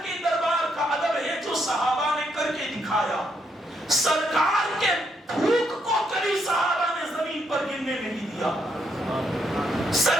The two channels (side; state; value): both; normal; correlation 0.76